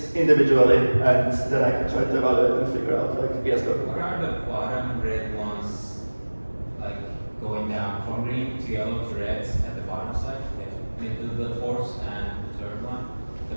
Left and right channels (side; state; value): both; inverted; correlation -1.00